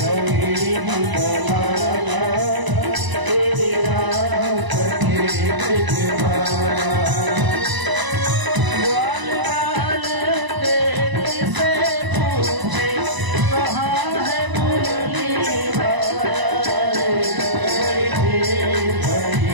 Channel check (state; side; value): late; left; 1.0 ms